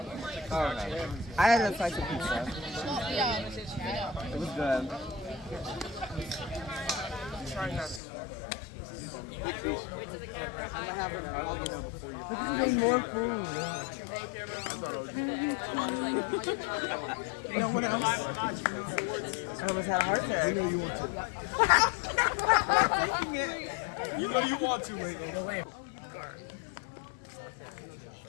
oh no. I had a slice of pizza. Yeah, I know. It was good. Trying not to. Wait to the camera. I'm gonna have it all dinner before you. This is more food. You know what else? I almost had a heart attack. You know you want to. You know you want to, wait.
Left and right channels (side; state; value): right; drops out; at 8.0 s